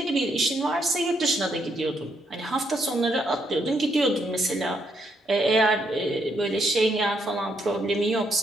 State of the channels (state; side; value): normal; both; correlation 0.75